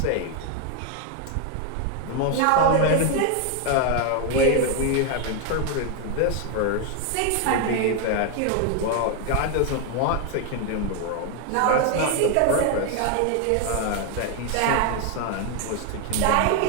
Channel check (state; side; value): different; both; correlation 0.01